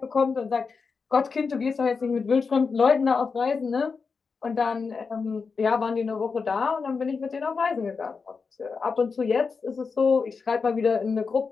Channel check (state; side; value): quieter; right; 5.0 dB